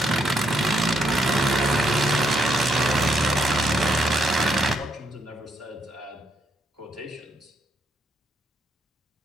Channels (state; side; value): normal; both; correlation 0.76